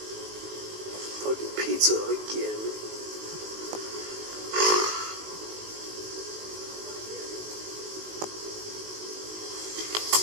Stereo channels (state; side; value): late; left; 19 ms